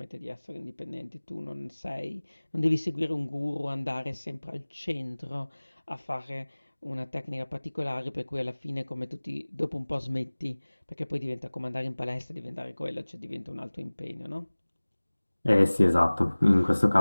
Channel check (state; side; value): inverted; both; correlation -1.00